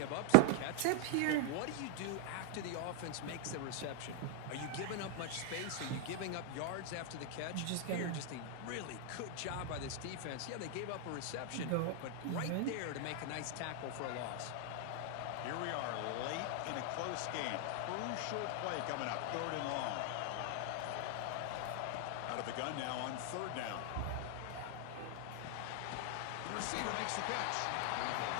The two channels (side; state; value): both; different; correlation 0.00